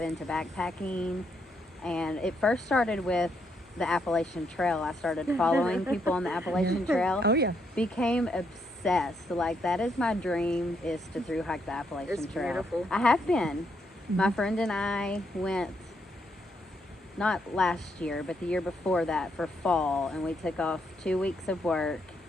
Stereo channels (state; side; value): normal; both; correlation 0.76